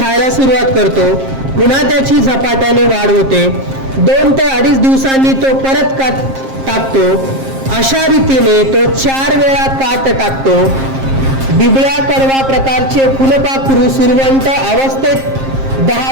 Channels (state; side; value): late; left; 7.5 ms